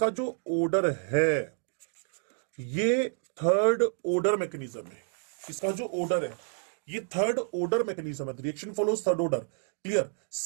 जो ऑर्डर है ये थर्ड ऑर्डर मैकेनिज्म है। इसका जो ऑर्डर है ये थर्ड ऑर्डर मैकेनिज्म है, reaction follows third order, clear.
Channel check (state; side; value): silent; left; 56 dB below the other